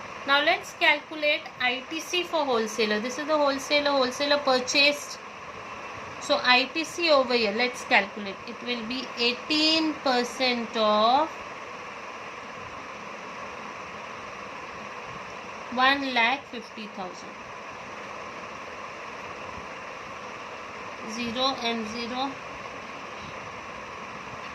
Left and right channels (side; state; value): both; identical; correlation 1.00